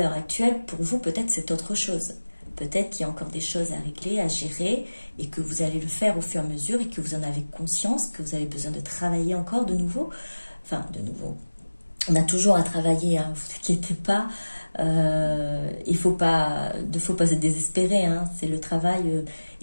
actuelle, pour vous, peut-être c'est autre chose. Peut-être qu'il y a encore des choses à régler, à gérer, et que vous allez le faire au fur et à mesure, et que vous en avez conscience, que vous avez besoin de travailler encore de nouveau. Enfin, de nouveau, on a toujours à travailler, hein, vous inquiétez pas. Il ne faut pas se désespérer, hein, c'est le travail,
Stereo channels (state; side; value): inverted; both; correlation -1.00